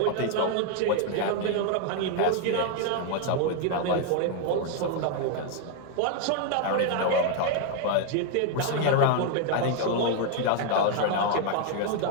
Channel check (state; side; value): different; both; correlation 0.00